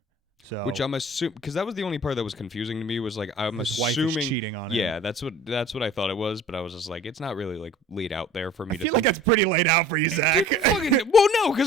So, which I'm assuming, because that was the only part that was confusing to me, was like his wife is cheating on him. Yeah, that's what I thought it was, but I was just like, it's not really like laid out there for me. I feel like that's pretty laid out for you, Zach. Well, no,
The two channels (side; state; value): both; normal; correlation 0.46